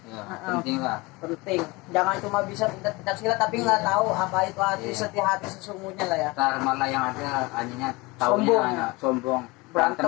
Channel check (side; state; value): right; quieter; 23.8 dB